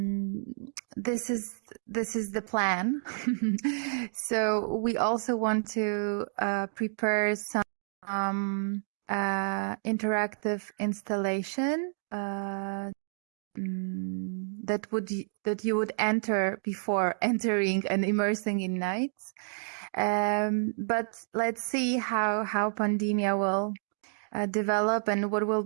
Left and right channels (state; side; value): silent; left; digital silence